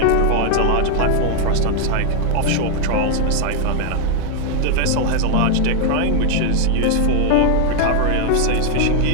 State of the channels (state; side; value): different; both; correlation 0.00